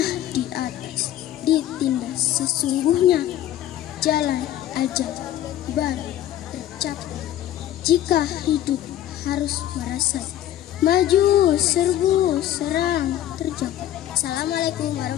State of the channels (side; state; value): right; quieter; 12.4 dB